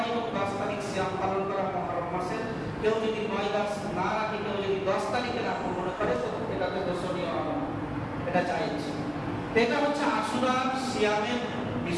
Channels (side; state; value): both; identical; correlation 1.00